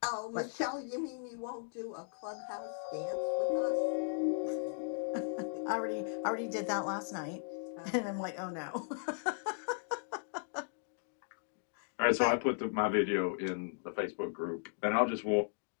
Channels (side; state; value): right; silent; digital silence